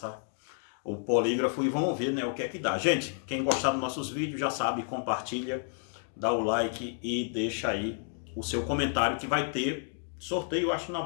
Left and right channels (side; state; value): right; silent; 57 dB below the other